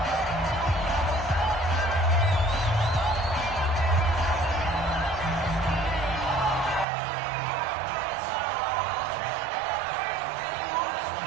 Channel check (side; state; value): left; drops out; at 6.9 s